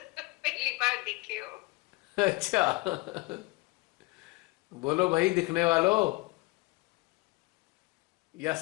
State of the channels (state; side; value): quieter; right; 23.2 dB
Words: बार दिखे हो। अच्छा बोलो भाई, दिखने वालों, या